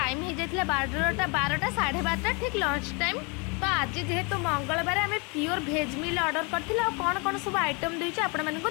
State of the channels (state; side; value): quieter; right; 31.7 dB